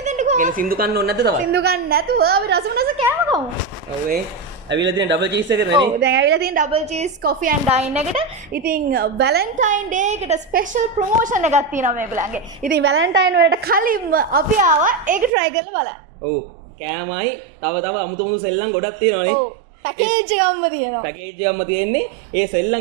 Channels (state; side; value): drops out; left; at 15.3 s